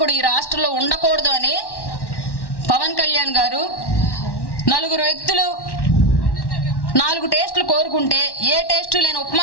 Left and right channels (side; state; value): right; late; 1.1 ms